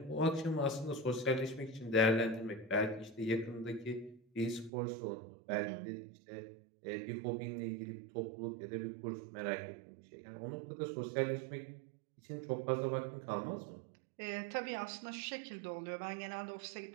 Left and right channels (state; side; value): drops out; left; at 4.7 s